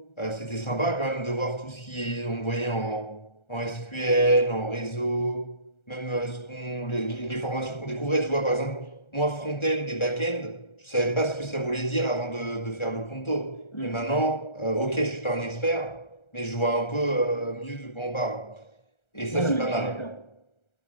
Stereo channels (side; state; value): right; late; 1.3 ms